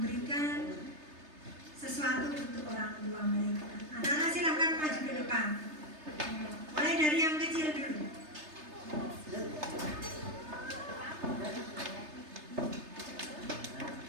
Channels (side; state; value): left; late; 3.3 ms